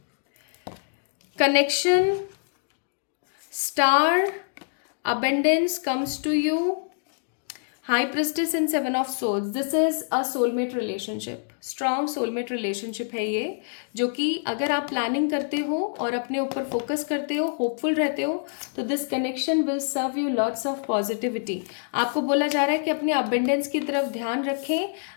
Connection, star, abundance comes to you. High Priestess and Seven of Swords. This is a soulmate relationship. Strong soulmate relationship है ये, जो कि अगर आप planning करते हो और अपने ऊपर फोकस करते हो, होपफुल रहते हो, तो this connection will serve you lots of positivity. आपको बोला जा रहा है कि अपने अबेंडेंस की तरफ ध्यान रखें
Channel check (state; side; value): silent; right; digital silence